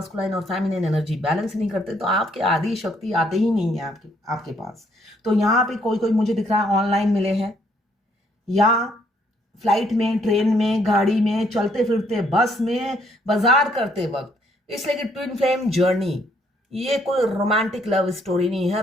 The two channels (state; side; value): normal; both; correlation 0.68